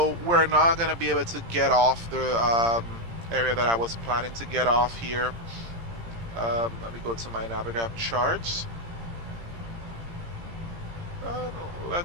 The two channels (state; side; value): late; left; 17 ms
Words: we're not gonna be able to get off the area that I was planning to get off here. Let me go to my Navigraph charts.